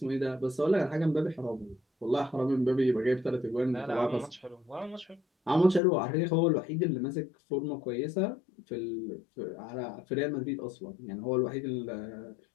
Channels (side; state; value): right; drops out; at 5.8 s